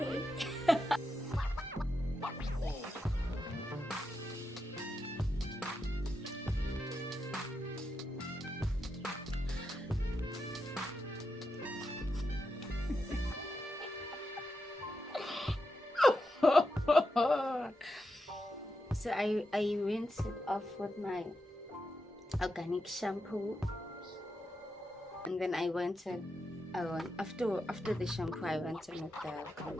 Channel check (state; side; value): normal; both; correlation 0.86